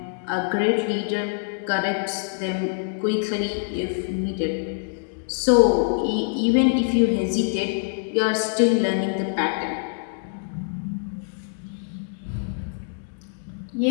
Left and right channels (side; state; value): right; silent; digital silence